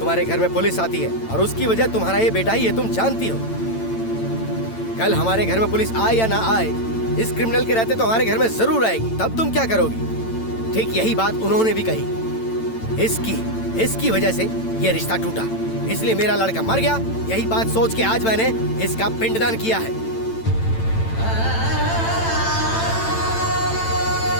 घर में पुलिस आती है और उसकी वजह तुम्हारा ये बेटा ही है, तुम जानती हो। कल हमारे घर में पुलिस आए या ना आए, इस क्रिमिनल के रहते तो हमारे घर में जरूर आएगी। तब तुम क्या करोगी? ठीक यही बात उन्होंने भी कही। इसकी वजह से ये रिश्ता टूटा, इसलिए मेरा लड़का मर गया। यही बात सोच के आज मैंने इसका पिंडदान किया है।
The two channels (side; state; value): right; late; 9.0 ms